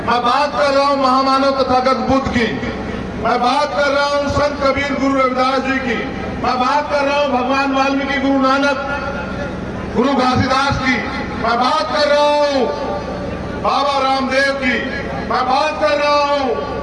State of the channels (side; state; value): both; identical; correlation 1.00